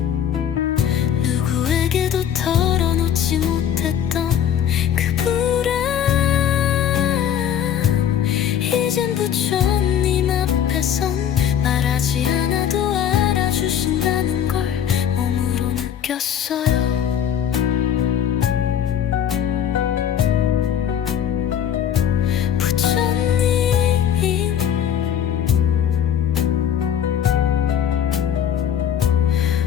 누구에게도 털어놓지 못했던 그 불안, 이젠 부처님 앞에선 말하지 않아도 알아주신다는 걸 몸으로 느꼈어요. 부처님,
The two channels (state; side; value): quieter; right; 9.5 dB